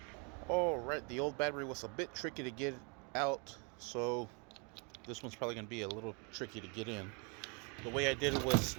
Alright, the old battery was a bit tricky to get out, so this one's probably going to be a little tricky to get in. The way I did it was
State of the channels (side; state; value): left; quieter; 34.4 dB